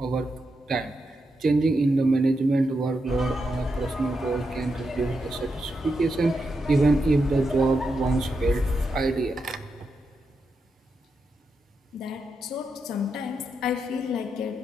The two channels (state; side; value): normal; both; correlation 0.85